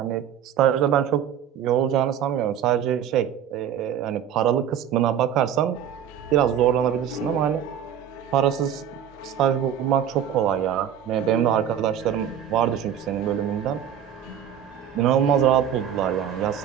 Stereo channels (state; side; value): quieter; left; 9.3 dB